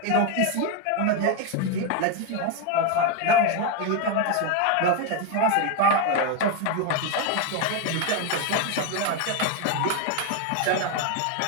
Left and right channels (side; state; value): both; different; correlation 0.02